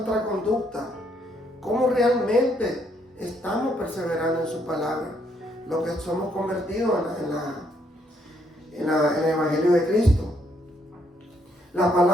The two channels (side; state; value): both; normal; correlation 0.72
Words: conducta, cómo realmente estamos perseverando en su palabra, lo que somos convertidos en el Evangelio de Cristo. La